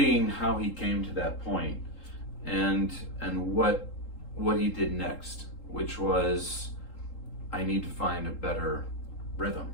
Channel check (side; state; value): right; late; 3.8 ms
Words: how he came to that point and what he did next, which was, I need to find a better rhythm.